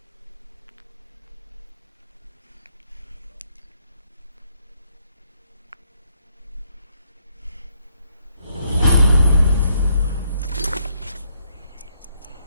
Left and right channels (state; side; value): inverted; both; correlation -0.72